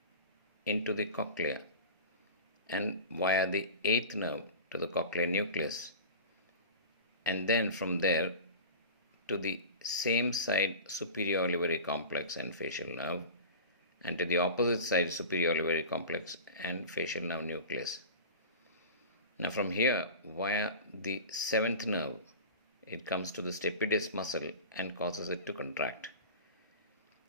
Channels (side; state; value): both; inverted; correlation -0.34